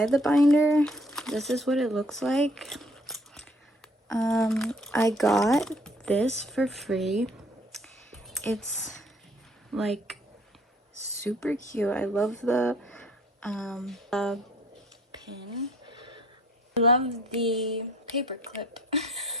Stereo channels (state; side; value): normal; both; correlation 0.58